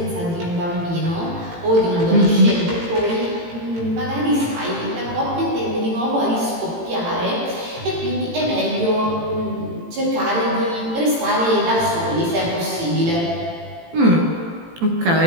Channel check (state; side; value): late; left; 18 ms